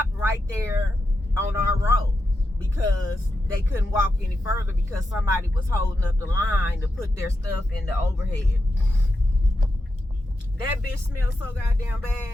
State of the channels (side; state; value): both; normal; correlation 0.87